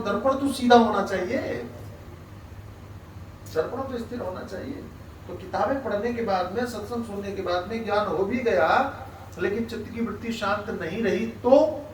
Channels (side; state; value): both; identical; correlation 1.00